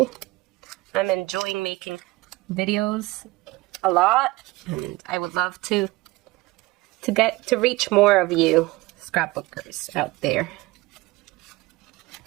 I'm enjoying making videos a lot, and I would love to get to reach more of you scrapbookers out there.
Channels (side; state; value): left; quieter; 21.0 dB